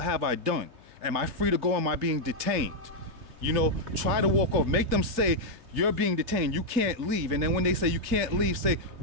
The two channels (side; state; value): left; late; 3.3 ms